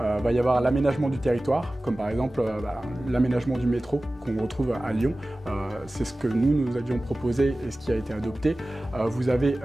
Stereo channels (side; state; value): both; normal; correlation 0.97